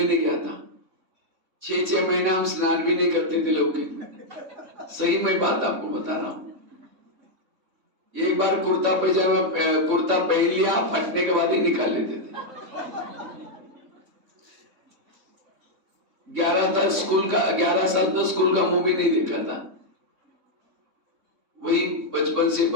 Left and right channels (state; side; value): late; left; 3.6 ms